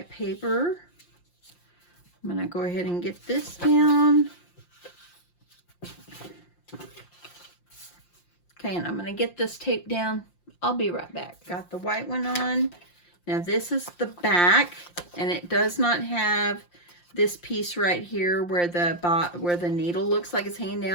paper. I'm going to go ahead and get this down. Okay, and I'm going to get this tape down. I'll be right back. Got the white one on. Now this is the back, and it does not have this piece right here where the needle looks like it's hanging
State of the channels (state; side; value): late; right; 5.7 ms